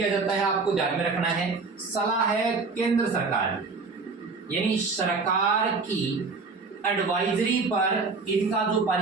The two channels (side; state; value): left; quieter; 4.3 dB